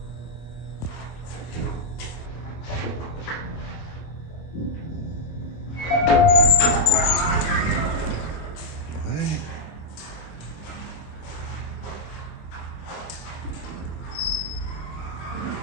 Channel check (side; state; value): right; late; 26 ms